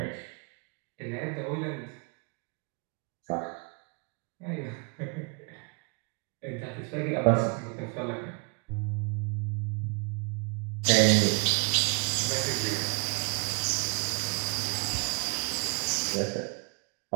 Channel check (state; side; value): quieter; left; 33.2 dB